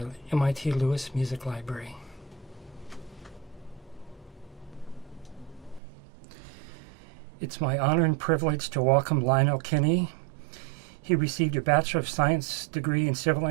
MIT Lewis Music Library. It's my honor and privilege to welcome Lionel Kinney. He received a Bachelor of Science degree in Civil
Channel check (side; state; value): left; drops out; at 5.8 s